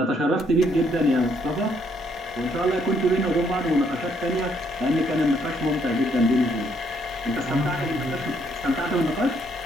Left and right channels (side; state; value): both; normal; correlation 0.70